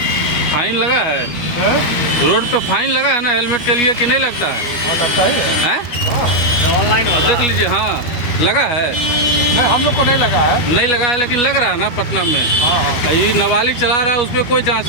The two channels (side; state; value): right; late; 12 ms